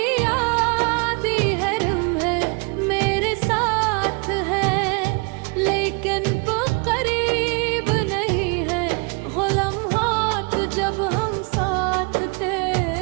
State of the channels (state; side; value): quieter; left; 32.8 dB